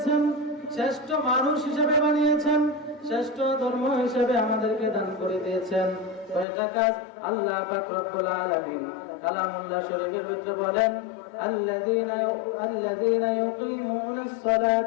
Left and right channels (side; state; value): right; drops out; at 6.5 s